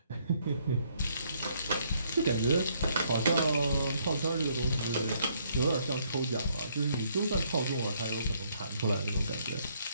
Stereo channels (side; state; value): both; inverted; correlation -0.68